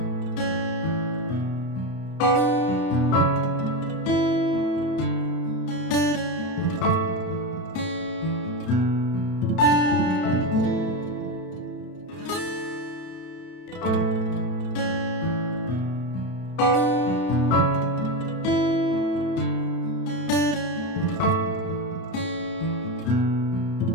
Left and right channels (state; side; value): late; right; 31 ms